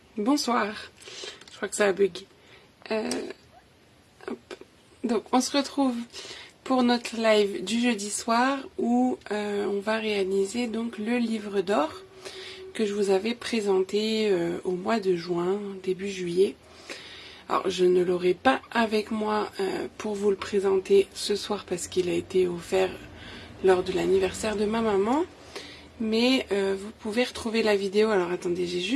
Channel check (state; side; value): identical; both; correlation 1.00